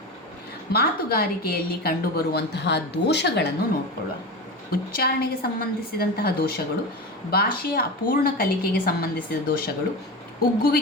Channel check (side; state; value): both; normal; correlation 0.25